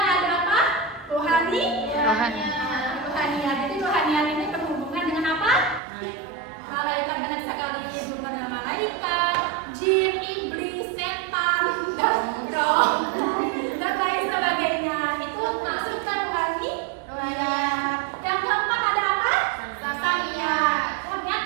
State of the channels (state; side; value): drops out; left; at 5.8 s